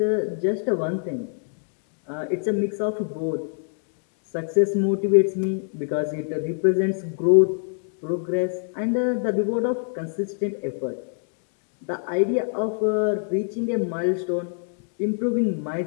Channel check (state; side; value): silent; right; 62 dB below the other